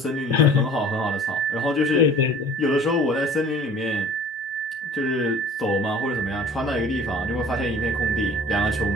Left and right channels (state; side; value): normal; both; correlation 0.46